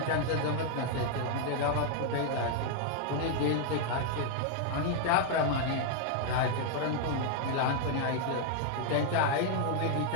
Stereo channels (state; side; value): different; both; correlation 0.00